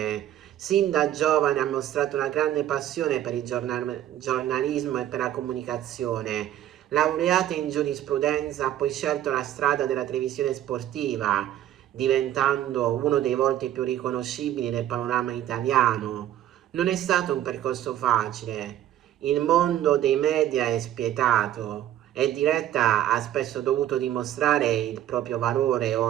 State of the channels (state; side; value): quieter; left; 12.1 dB